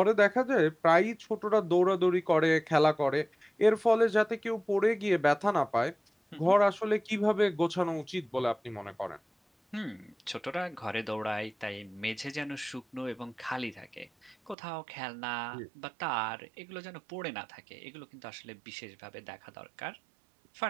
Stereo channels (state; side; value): drops out; left; at 14.6 s